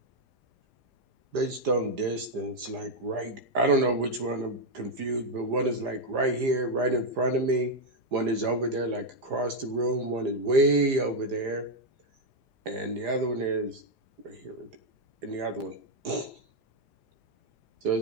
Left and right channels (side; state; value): left; late; 4.9 ms